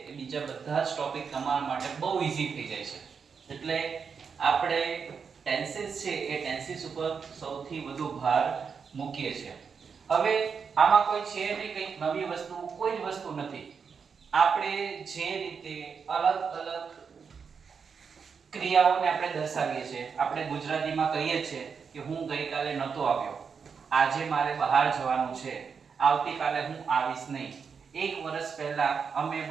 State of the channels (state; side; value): quieter; left; 6.0 dB